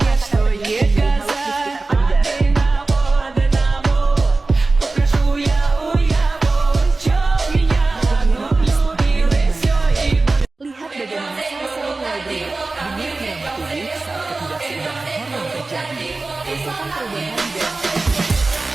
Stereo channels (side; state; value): left; quieter; 3.5 dB